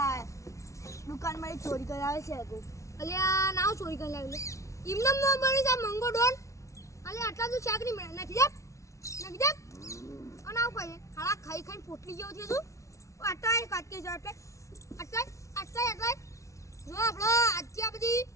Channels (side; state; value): right; late; 0.14 ms